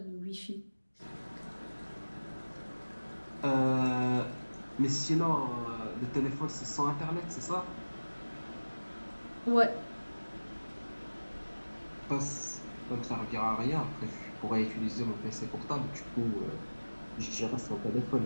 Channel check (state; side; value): inverted; both; correlation -1.00